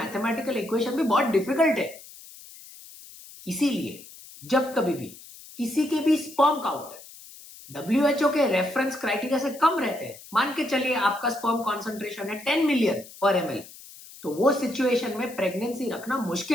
इक्वेशन भी बहुत डिफिकल्ट है. इसीलिए जब कभी भी किसी के भी स्पर्म काउंट WHO के रेफरेंस क्राइटेरिया से कम रहते हैं, मान के चलिए आपका स्पर्म कॉन्सेंट्रेशन है 10 मिलियन पर ml, तो वो सिचुएशन में प्रेगनेंसी रखना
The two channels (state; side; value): noise; left; hiss, 18 dB below the sound